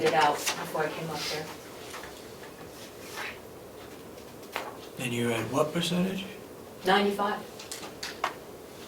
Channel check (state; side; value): identical; both; correlation 1.00